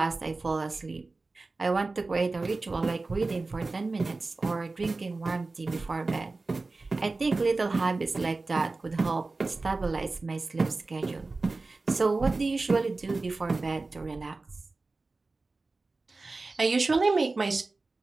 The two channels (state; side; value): quieter; left; 3.5 dB